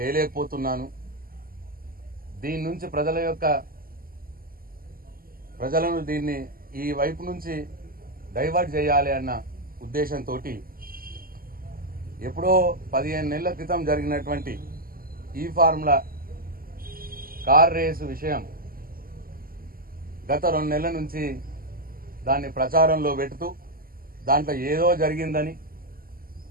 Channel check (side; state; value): left; late; 0.42 ms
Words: దీని నుంచి ప్రజలను దీన్ని ఈ వైపు నుంచి డైవర్ట్ చేయాలి అన్న ఉద్దేశంతో ఎప్పుడో 15 నెలల క్రితం జరిగినటువంటి ఈ ఫార్ములా కార్ రేసు విషయం గత 2 నెలల నుంచి దాన్ని ప్రచారంలో పెడుతూ దాంట్లో ఏదో జరిగిందని,